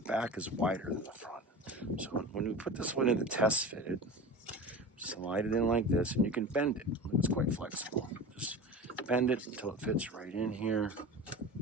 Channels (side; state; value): both; normal; correlation 0.33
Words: back is wider than the front. So when we put this one in the test fitted, slide it in like this, and you can bend it. It's quite flexible. Just bend it until it fits right in here,